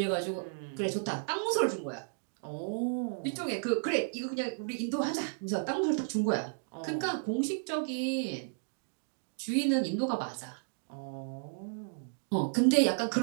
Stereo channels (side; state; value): left; silent; digital silence